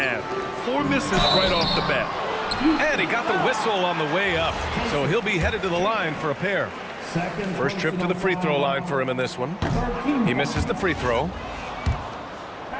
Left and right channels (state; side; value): identical; both; correlation 1.00